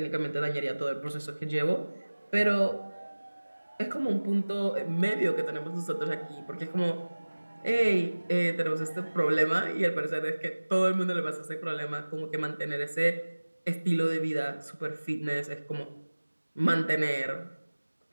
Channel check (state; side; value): inverted; both; correlation -1.00